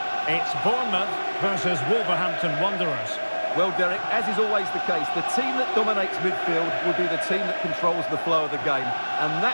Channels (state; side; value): inverted; both; correlation -1.00